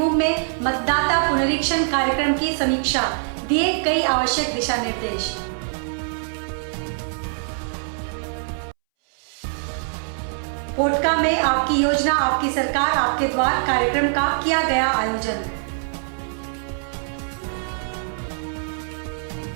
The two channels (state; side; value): silent; left; 63 dB below the other